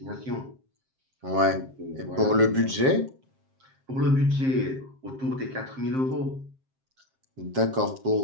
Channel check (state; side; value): late; left; 7.6 ms